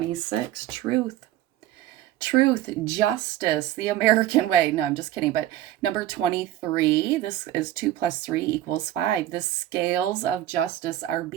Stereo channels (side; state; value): left; quieter; 13.5 dB